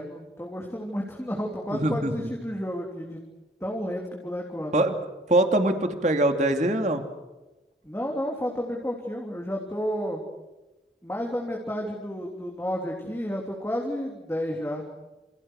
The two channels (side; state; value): both; normal; correlation 0.62